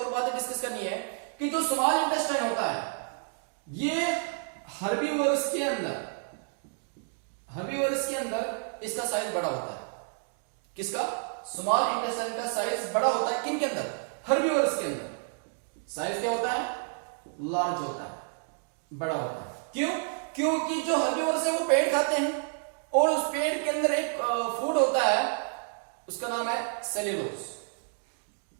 और बातें डिस्कस करनी है कि जो स्मॉल इंटेस्टाइन होता है ये हर्बीवोरस के अंदर इसका साइज बड़ा होता है। किसका? स्मॉल इंटेस्टाइन का साइज बड़ा होता है। किन के अंदर? हर्बीवोरस के अंदर साइज क्या होता है? लार्ज होता है, बड़ा होता है। क्यों? क्योंकि जो हर्बीवोरस है वो पेड़ खाते हैं, और उस पेड़ के अंदर एक फूड होता है, उसका नाम है सेल्यूलोज।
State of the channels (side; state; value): left; silent; 58 dB below the other